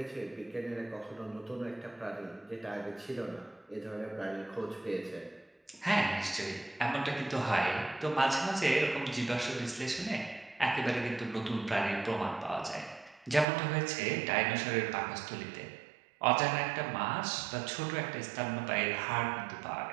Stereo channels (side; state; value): left; drops out; at 13.5 s